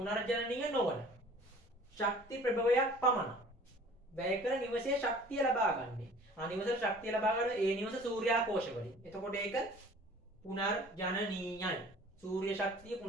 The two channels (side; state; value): both; normal; correlation 0.48